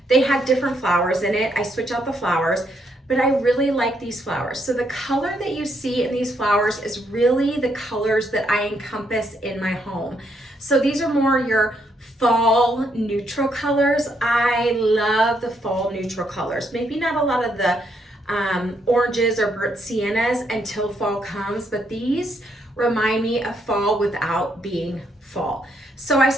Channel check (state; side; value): normal; both; correlation 0.75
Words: They had different flowers in it. I switch out the flowers, but I really like these flowers. So the color that you see in these flowers is really the colors that I encompass in my home. So these are more your fall neutral colors. I love the fall neutral colors. Maybe not a lot of the oranges or burnt siennas until fall comes, but these remind me of fall without being fall. So I